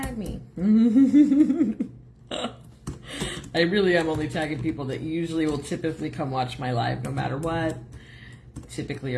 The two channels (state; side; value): identical; both; correlation 1.00